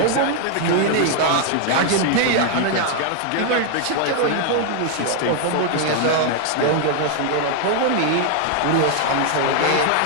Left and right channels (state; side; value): different; both; correlation 0.00